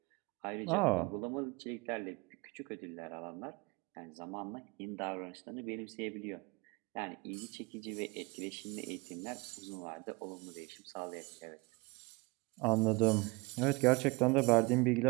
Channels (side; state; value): left; quieter; 25.9 dB